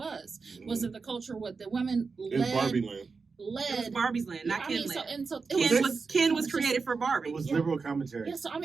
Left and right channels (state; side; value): quieter; left; 4.7 dB